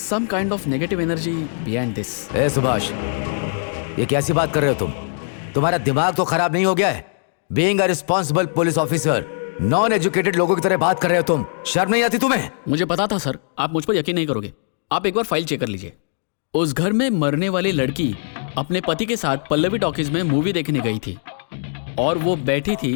kind of negative energy behind this. ए सुभाष, ये कैसी बात कर रहे हो तुम? तुम्हारा दिमाग तो खराब नहीं हो गया है? Being a responsible police officer, non educated लोगों की तरह बात कर रहे हो तुम। शर्म नहीं आती तुम्हें? मुझे पता था सर, आप मुझ पर यकीन नहीं करोगे। आप एक बार फाइल चेक कर लीजिए। उस घर में मरने वाली लड़की अपने पति के साथ पल्लवी टॉकीज में मूवी देखने गई थी, और वो बैठी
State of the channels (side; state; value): right; silent; digital silence